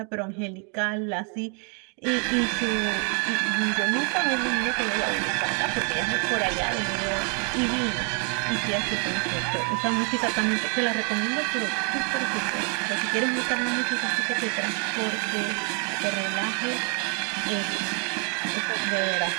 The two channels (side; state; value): left; quieter; 38.2 dB